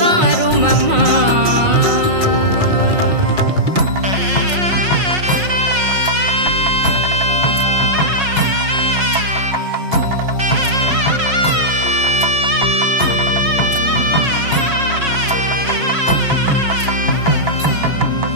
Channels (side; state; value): left; late; 5.5 ms